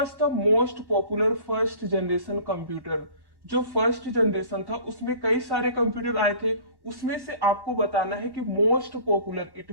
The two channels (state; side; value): late; left; 1.1 ms